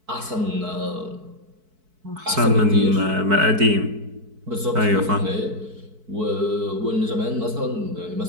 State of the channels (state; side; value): late; left; 4.6 ms